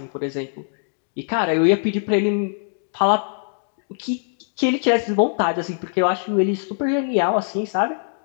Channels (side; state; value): right; silent; digital silence